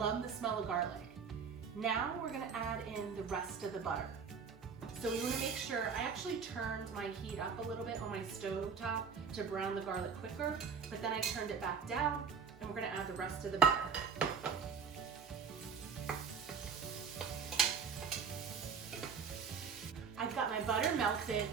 the smell of garlic. Now we're gonna add in the rest of the butter. So we wanna make sure, I actually turned my heat up a little bit on my stove top to brown the garlic quicker, but then I turned it back down, and we're gonna add the rest of the butter. I've got my butter melted,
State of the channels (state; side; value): quieter; left; 6.2 dB